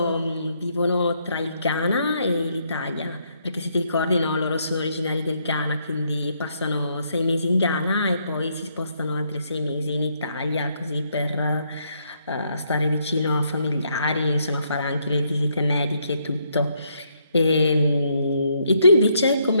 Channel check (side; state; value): both; inverted; correlation -0.74